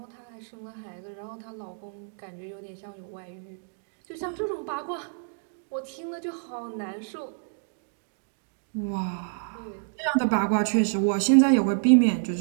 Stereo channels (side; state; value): left; silent; digital silence